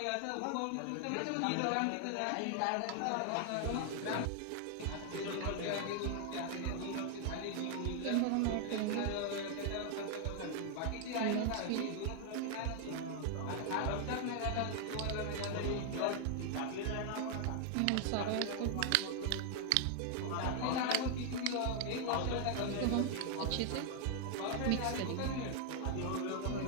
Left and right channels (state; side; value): different; both; correlation 0.00